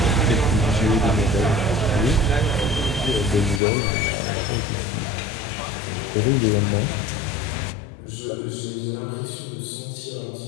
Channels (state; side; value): drops out; right; at 3.6 s